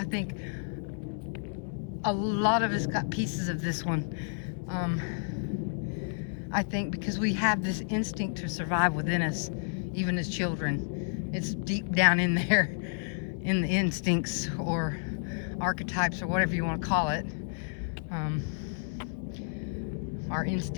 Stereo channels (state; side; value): silent; right; 57 dB below the other